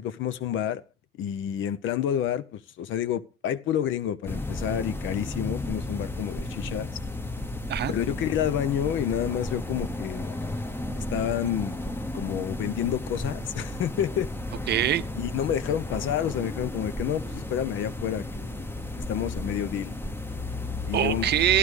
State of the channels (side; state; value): right; quieter; 3.3 dB